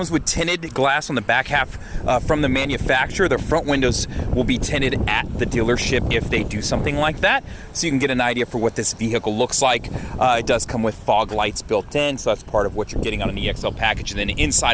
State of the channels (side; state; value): both; identical; correlation 1.00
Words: with tinted glass on the back half from the manufacturer. The front windows will be tinted at the dealership if they do something like that. So you can get an idea for what this vehicle looks like. It does come with fog lights built in, so that's part of what you're getting on an EXL package. And then